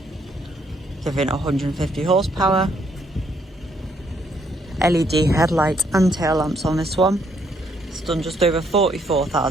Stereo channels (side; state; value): both; normal; correlation 0.71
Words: giving 150 horsepower. LED headlights and tail lamps on this one. It's done just over